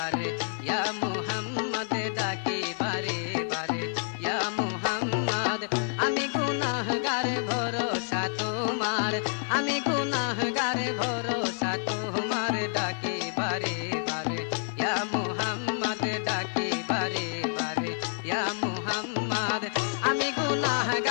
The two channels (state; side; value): silent; right; 56 dB below the other